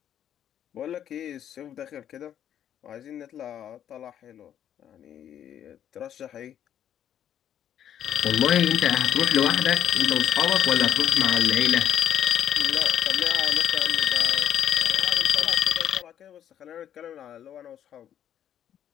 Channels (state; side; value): quieter; right; 10.0 dB